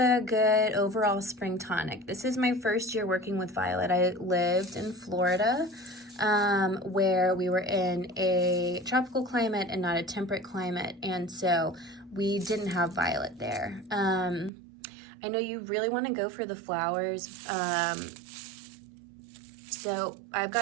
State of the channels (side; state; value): left; drops out; at 14.5 s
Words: good overall spring tonic. This is my first year working with violet. I lived in Florida, where we were in a tropical climate and not a temperate climate, and so we didn't have violet there. I know you really want to go for the flowers, so I've